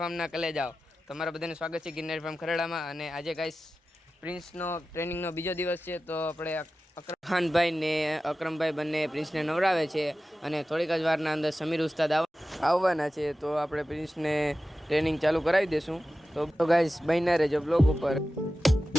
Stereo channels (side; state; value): both; normal; correlation 0.94